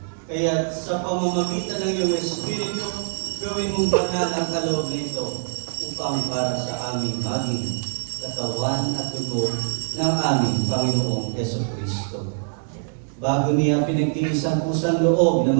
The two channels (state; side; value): silent; left; digital silence